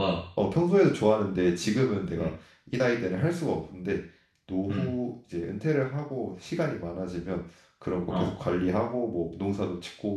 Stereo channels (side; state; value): both; identical; correlation 1.00